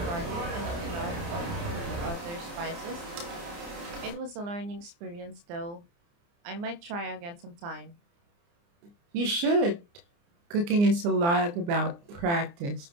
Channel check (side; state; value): left; late; 29 ms